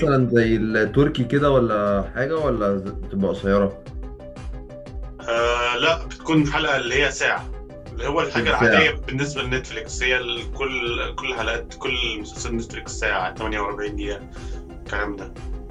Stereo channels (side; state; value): both; identical; correlation 1.00